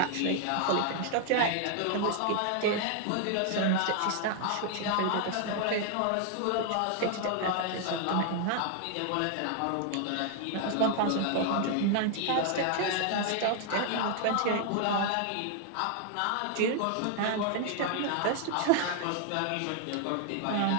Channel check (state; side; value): different; both; correlation 0.00